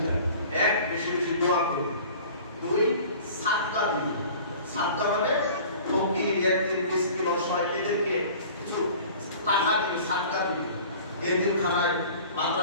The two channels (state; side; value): inverted; both; correlation -0.44